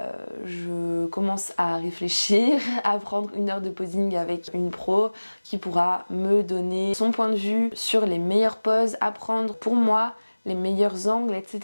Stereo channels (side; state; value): both; inverted; correlation -1.00